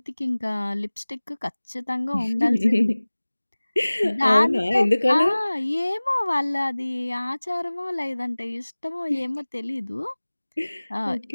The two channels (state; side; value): inverted; both; correlation -1.00